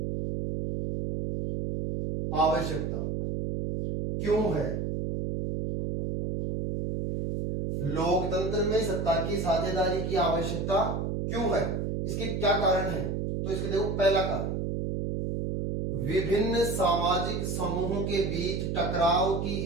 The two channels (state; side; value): noise; right; hum, 2 dB below the sound